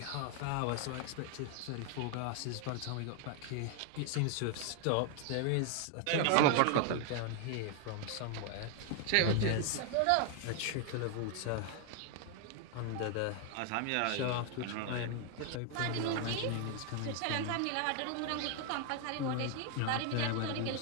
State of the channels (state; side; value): different; both; correlation 0.00